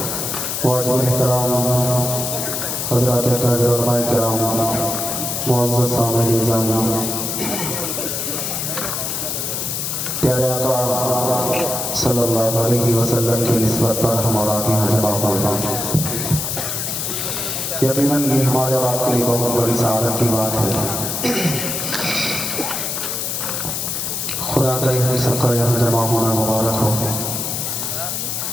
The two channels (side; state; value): left; noise; hiss, 2 dB below the sound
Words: वाजिब एहतराम हज़रात अकाबिर उलमाए किराम, मुअज़्ज़ज़ सामईन निज़ाम, प्यारे आका सल्लल्लाहु अलैहि वसल्लम की निस्बत पर हम और आप यहाँ जमा हुए हैं। यकीनन ये हमारे और आपके लिए बहुत बड़ी सआदत की बात है। खुदा करे हम सबका यहाँ जमा होना मुबारक हो।